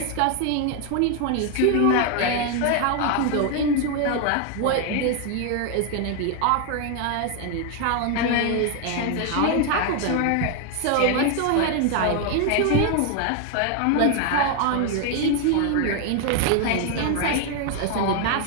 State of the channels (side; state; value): both; different; correlation 0.01